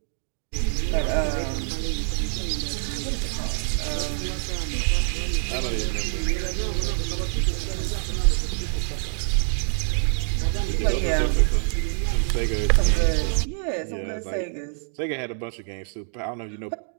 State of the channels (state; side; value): silent; left; 57 dB below the other